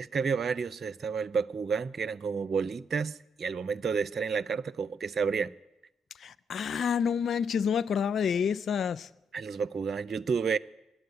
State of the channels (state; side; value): normal; both; correlation 0.74